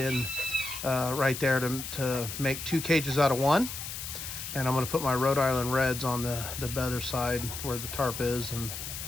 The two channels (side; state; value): left; noise; hiss, 7 dB below the sound